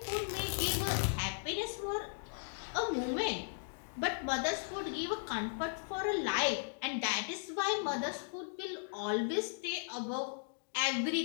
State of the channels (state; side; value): silent; right; digital silence